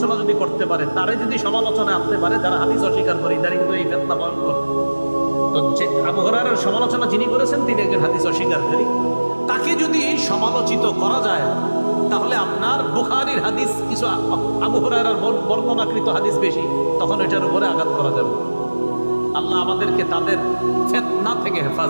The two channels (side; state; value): both; inverted; correlation -1.00